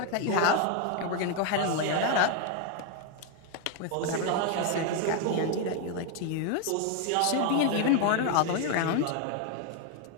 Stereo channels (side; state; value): both; different; correlation 0.01